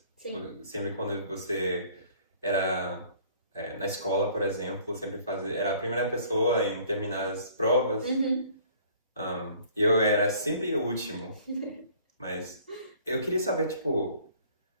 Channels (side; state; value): both; inverted; correlation -0.55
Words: Sim. Sempre quando você era na escola, por exemplo, era a primeira pessoa em terminar as provas. Eu era sempre o último. Mas eu queria saber, tipo,